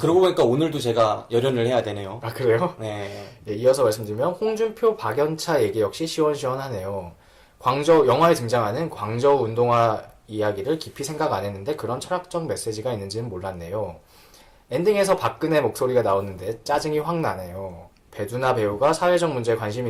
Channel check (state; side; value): identical; both; correlation 1.00